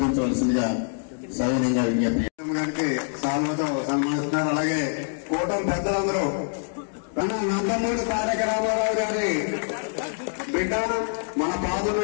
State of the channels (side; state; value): right; silent; digital silence